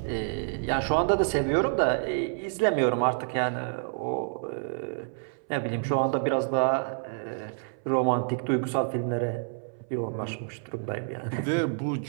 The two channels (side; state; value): left; silent; 59 dB below the other